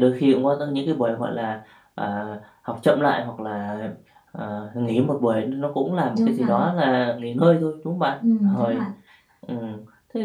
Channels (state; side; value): identical; both; correlation 1.00